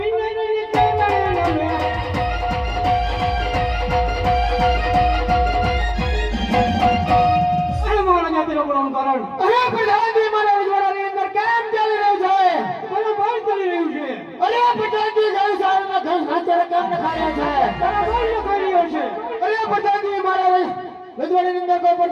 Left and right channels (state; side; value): identical; both; correlation 1.00